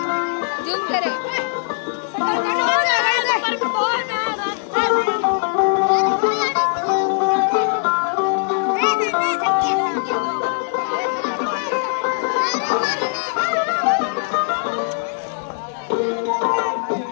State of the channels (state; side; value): silent; right; digital silence